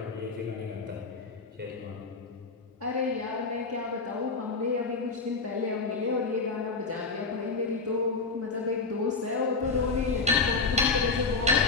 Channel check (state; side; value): quieter; right; 4.2 dB